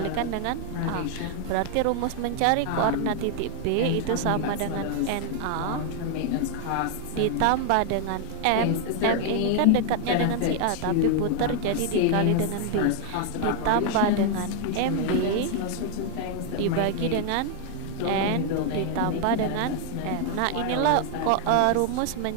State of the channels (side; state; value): both; different; correlation 0.00